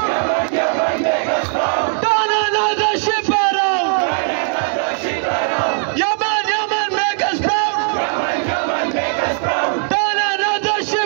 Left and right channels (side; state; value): left; silent; digital silence